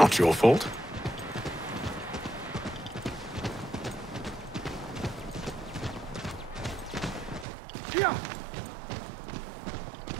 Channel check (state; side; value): drops out; left; at 7.5 s